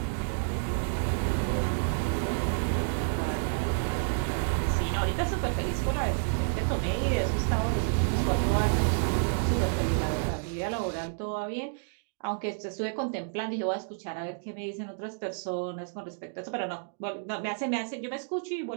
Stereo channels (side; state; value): left; silent; digital silence